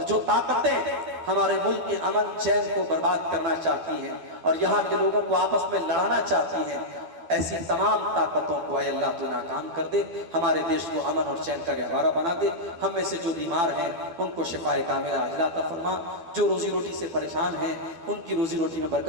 جو طاقتیں ہمارے ملک کے امن چین کو برباد کرنا چاہتی ہیں اور یہاں کے لوگوں کو آپس میں لڑانا چاہتی ہیں، ایسی تمام طاقتوں کو اے اللہ تو ناکام کر دے، ہمارے دیش کو امن اور چین کا گہوارہ بنا دے، ہم میں سے جو بیمار ہیں ان کو شفائے کاملہ عاجلہ عطا فرما، جو روزی روٹی سے پریشان ہیں ان کی روزی روٹی میں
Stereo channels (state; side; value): late; left; 12 ms